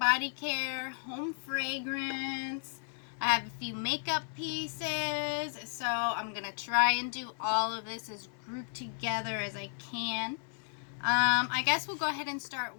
care, home fragrance. I have a few makeup pieces, so I'm gonna try and do all of this as grouped together as I can. I guess we'll go ahead and start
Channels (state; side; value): silent; right; 55 dB below the other